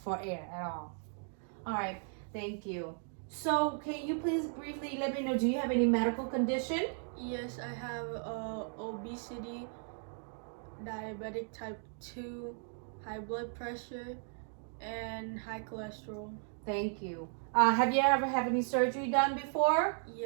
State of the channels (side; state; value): left; silent; 54 dB below the other